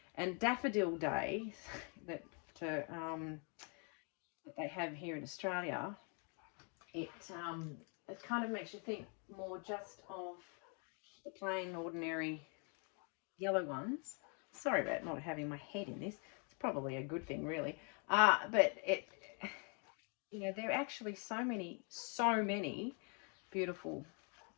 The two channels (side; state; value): right; quieter; 36.1 dB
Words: And Daffodil Day that they have here in Australia, it kind of makes you think more just of the plain, ordinary yellow ones. Sorry about not having my head in this. It's probably a good thing, really. But it, you know, there are actually so many beautiful